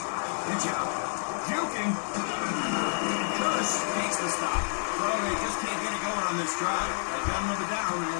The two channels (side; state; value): right; silent; digital silence